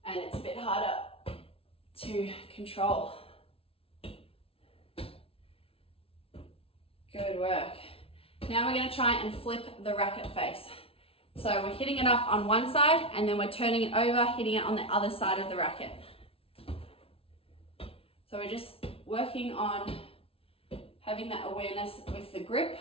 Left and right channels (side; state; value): right; late; 0.27 ms